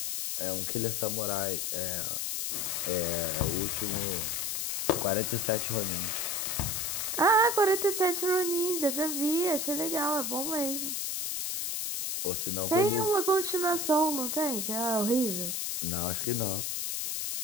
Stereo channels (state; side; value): noise; left; hiss, 1 dB below the sound